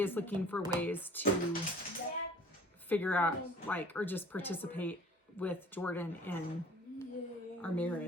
looking for ways to figure out or just participate with Jordan in our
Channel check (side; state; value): both; normal; correlation 0.49